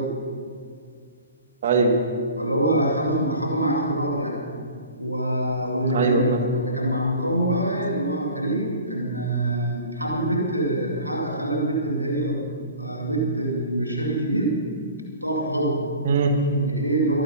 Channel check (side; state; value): both; inverted; correlation -0.42